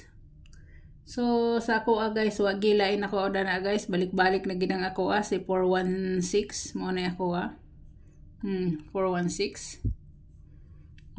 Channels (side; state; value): both; identical; correlation 1.00